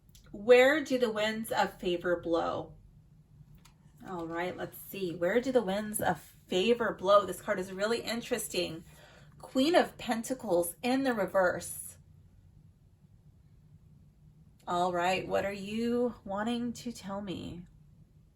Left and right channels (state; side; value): identical; both; correlation 1.00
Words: Where do the winds of favor blow? All right, let's see. Where do the winds of favor blow? This card is really interesting. Queen of Pentacles in the reverse. All right, what are you wanting to tell me?